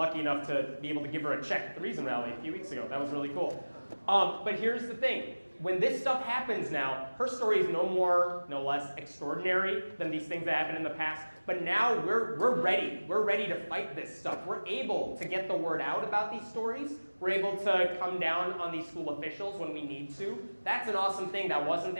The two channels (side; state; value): both; inverted; correlation -1.00